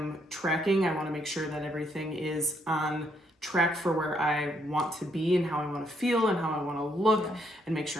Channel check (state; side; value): normal; both; correlation 0.73